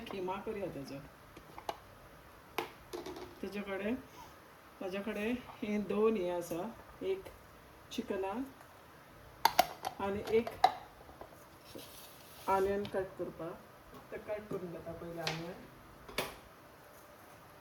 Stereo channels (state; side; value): identical; both; correlation 1.00